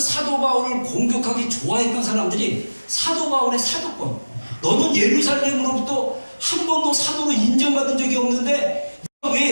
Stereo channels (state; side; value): inverted; both; correlation -1.00